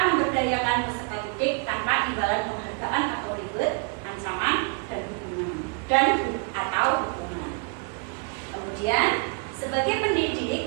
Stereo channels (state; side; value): quieter; left; 36.5 dB